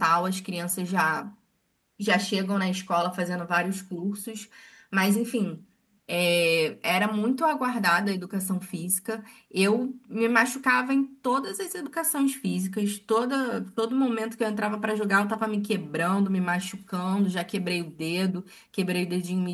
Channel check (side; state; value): both; identical; correlation 1.00